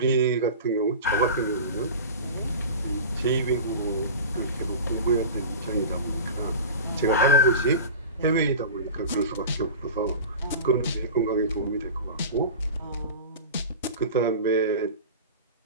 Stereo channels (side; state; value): both; inverted; correlation -0.32